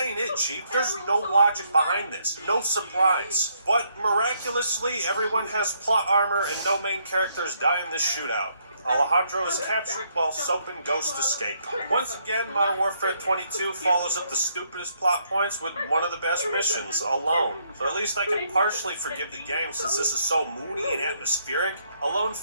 it, Chief. There's no logic behind this. No surprise. But miraculously, everyone has plot armor and no main characters die in this shootout. Alejandro is captured while Soap and Ghost escape. Once again, Modern Warfare 22 follows up the stupidest plot points with one of the best missions, Alone. So at least I can partially forgive the game since this is so moody and atmospheric. Alone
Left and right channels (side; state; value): both; inverted; correlation -0.71